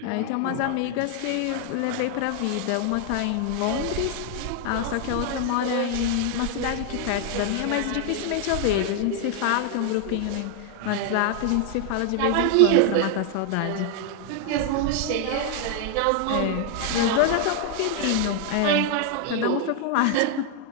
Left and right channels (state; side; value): different; both; correlation 0.00